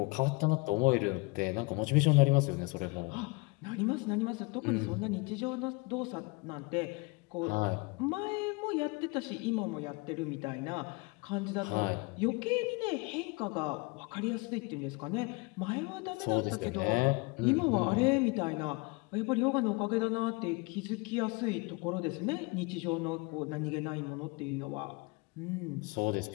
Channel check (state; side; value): quieter; right; 27.5 dB